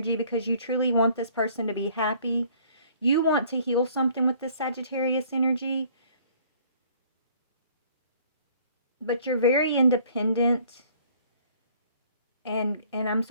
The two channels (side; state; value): both; inverted; correlation -0.57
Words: because you truly want this person to be happy. You want to heal something with this Sagittarius energy, but you're very independent. And I'm